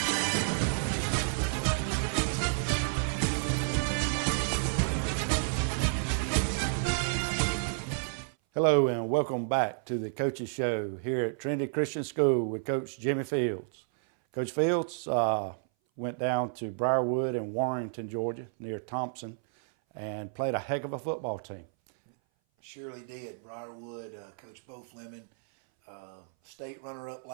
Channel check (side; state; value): left; silent; 57 dB below the other